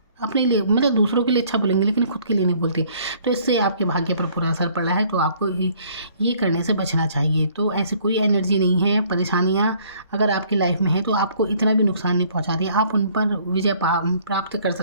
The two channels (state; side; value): inverted; both; correlation -0.59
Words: अपने लिए, मतलब दूसरों के लिए अच्छा बोलेंगे लेकिन खुद के लिए नहीं बोलते, तो इससे आपके भाग्य पर बुरा असर पड़ा है। तो आपको ये करने से बचना चाहिए। तो ऐसी कोई एनर्जी नहीं है, परेशानियाँ अगर आपकी लाइफ में है तो आपको इतना भी नुकसान नहीं पहुंचा रही, आप उन पर विजय प्राप्त कर